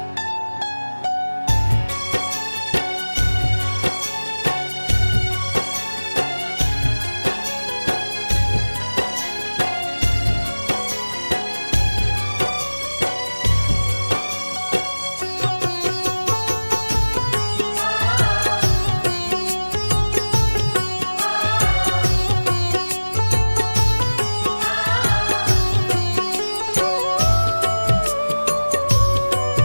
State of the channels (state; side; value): inverted; both; correlation -1.00